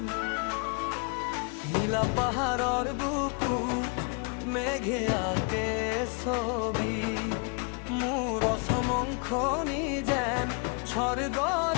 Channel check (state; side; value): quieter; right; 36.1 dB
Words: নীলা পাহাৰৰ বুকুত মেঘে আঁকে ছবি, মোৰ অসমংখনি যেন